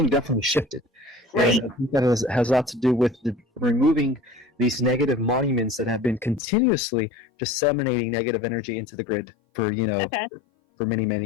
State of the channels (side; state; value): right; drops out; at 6.4 s